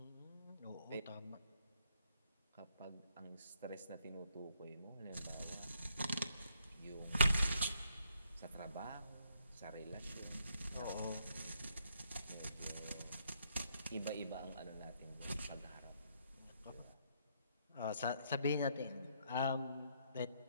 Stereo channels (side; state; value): both; inverted; correlation -0.72